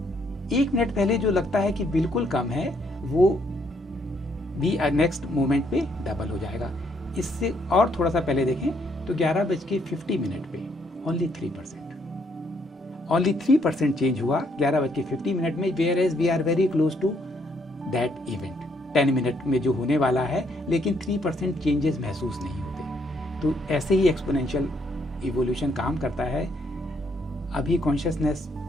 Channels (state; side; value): normal; both; correlation 0.71